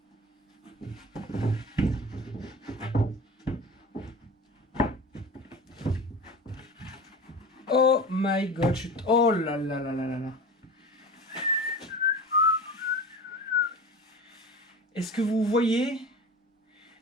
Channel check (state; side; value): normal; both; correlation 0.34